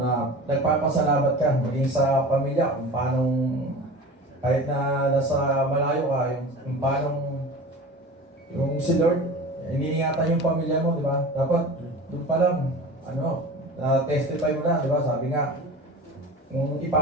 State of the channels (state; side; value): normal; both; correlation 0.36